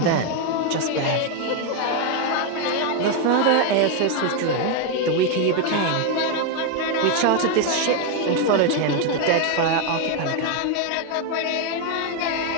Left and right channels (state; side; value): different; both; correlation 0.01